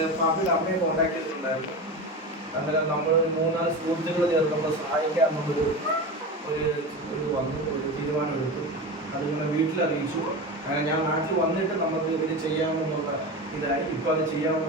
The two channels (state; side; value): normal; both; correlation 0.25